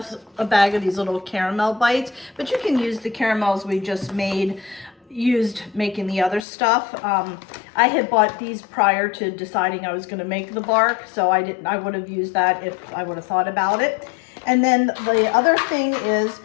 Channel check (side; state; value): right; drops out; at 6.4 s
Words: a bag of these little caramel bites, but you can use the caramels we just used making the other stuff. I had bought these prior to deciding I was going to make the bark, so I would have used that if I would have thought about it. And then the other thing is